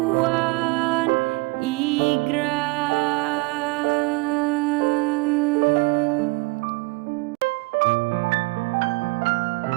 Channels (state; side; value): quieter; left; 24.4 dB